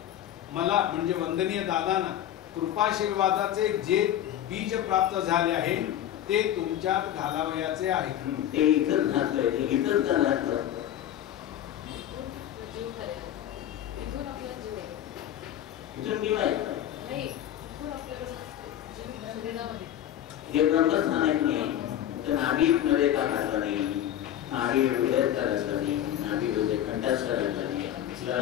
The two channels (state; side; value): quieter; right; 11.4 dB